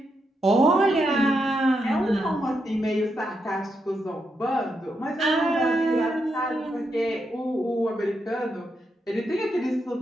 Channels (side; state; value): both; normal; correlation 0.82